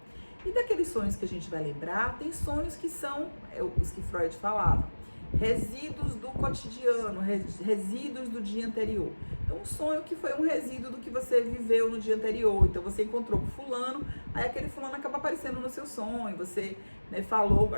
E daqueles sonhos que a gente vai lembrar, tem sonhos que são os que Freud falava, resíduos do cotidiano, resíduos do dia anterior. Então, um sonho que foi um resíduo do que você viveu no dia anterior. Então, você encontrou com fulano, aí aquele fulano acaba aparecendo no seu sonho. Você, né, falou,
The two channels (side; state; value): both; inverted; correlation -1.00